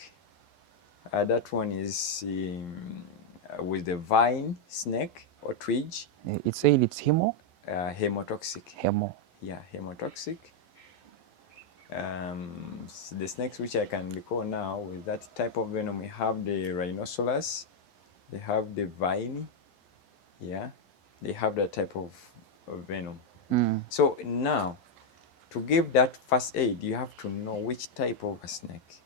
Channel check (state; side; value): late; right; 11 ms